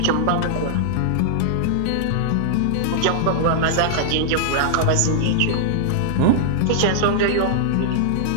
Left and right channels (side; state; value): both; different; correlation -0.01